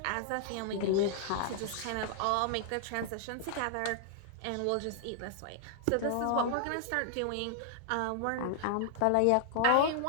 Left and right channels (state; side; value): different; both; correlation -0.01